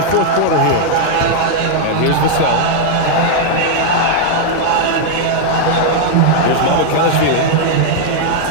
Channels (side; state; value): both; different; correlation -0.01